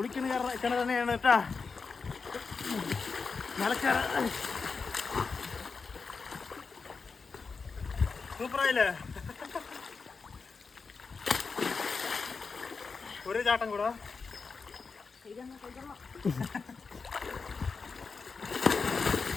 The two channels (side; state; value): right; quieter; 4.8 dB